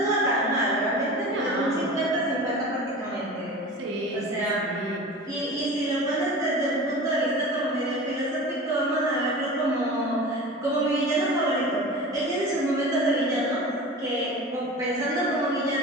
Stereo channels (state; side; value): normal; both; correlation 0.35